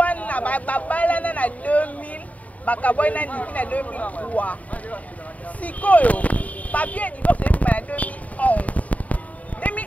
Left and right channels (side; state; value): right; late; 0.070 ms